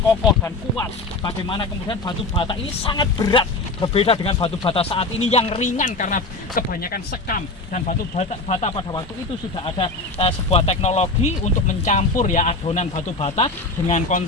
kokoh dan kuat. Bagaimana kemudian batu bata ini sangat berat, berbeda dengan batu bata saat ini yang ringan karena kebanyakan sekam. Dan batu bata pada waktu itu sudah ada sebuah teknologi untuk mencampur ya adonan batu bata dengan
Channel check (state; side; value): quieter; right; 3.2 dB